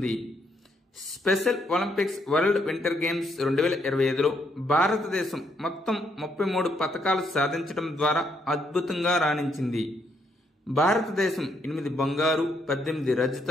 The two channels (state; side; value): normal; both; correlation 0.74